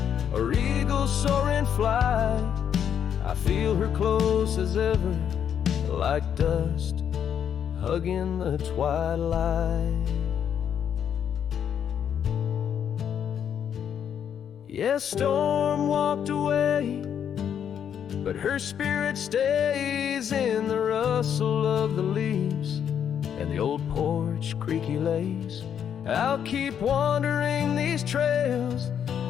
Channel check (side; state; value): right; quieter; 8.6 dB